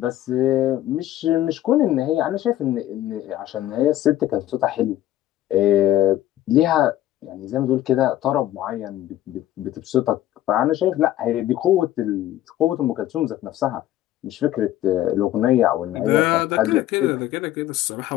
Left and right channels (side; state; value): right; quieter; 13.5 dB